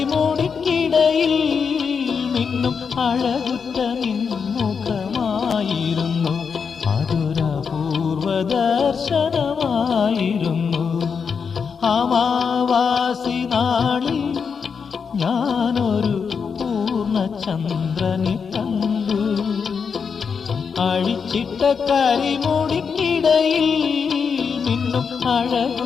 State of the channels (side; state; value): right; quieter; 6.0 dB